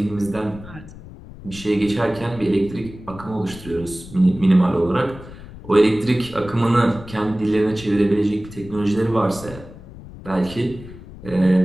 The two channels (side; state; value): left; noise; rumble, 16 dB below the sound